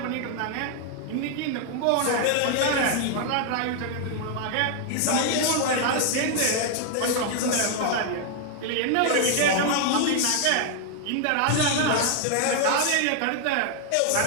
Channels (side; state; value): both; different; correlation 0.00